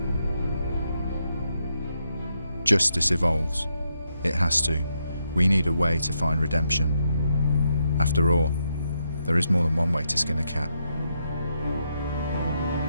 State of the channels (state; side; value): inverted; both; correlation -0.80